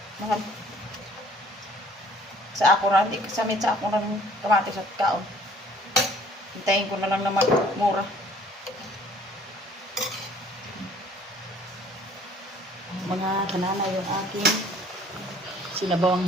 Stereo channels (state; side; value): normal; both; correlation 0.55